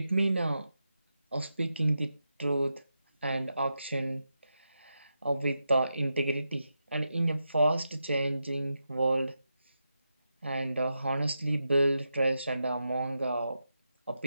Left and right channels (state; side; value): inverted; both; correlation -0.87